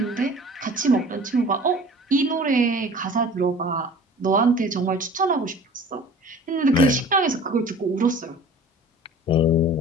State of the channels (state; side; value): normal; both; correlation 0.44